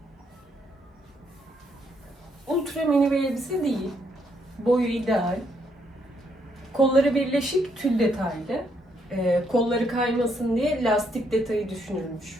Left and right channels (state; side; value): normal; both; correlation 0.74